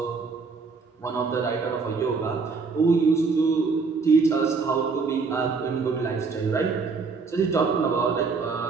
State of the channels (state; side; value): quieter; left; 4.7 dB